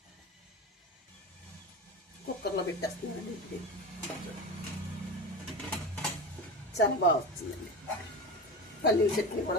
కుక్కర్లో పెట్టేస్తున్నానండి. ఇడ్లీ చాలా బాగా వచ్చిందండి. పల్లీల చట్నీ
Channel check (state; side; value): normal; both; correlation 0.26